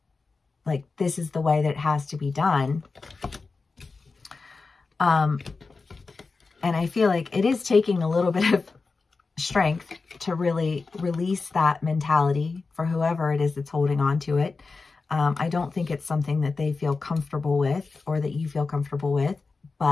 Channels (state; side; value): quieter; right; 4.2 dB